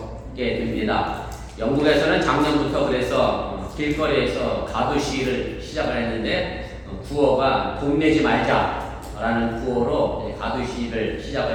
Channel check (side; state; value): both; identical; correlation 1.00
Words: 됩니다. 영국에서는 작년부터 그래서 길거리에서 가두 시위를 시작을 했는데 구호가 돈 내지 말자라는 구호로 가두 시위를